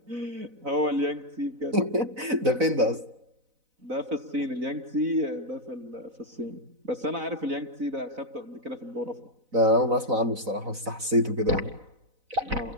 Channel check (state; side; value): late; left; 4.0 ms